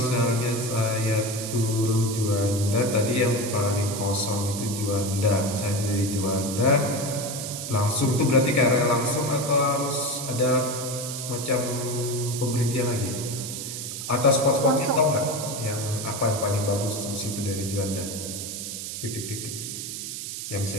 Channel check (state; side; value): noise; right; hiss, 6 dB below the sound